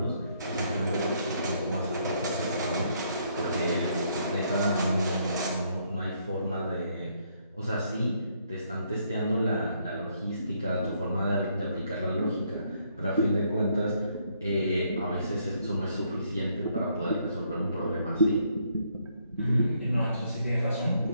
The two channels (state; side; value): inverted; both; correlation -0.71